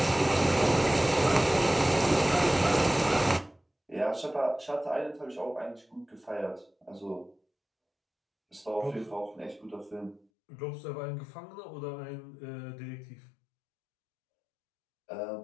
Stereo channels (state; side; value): drops out; right; at 10.2 s